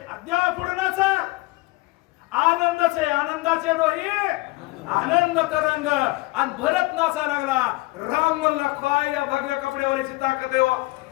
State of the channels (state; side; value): quieter; right; 22.1 dB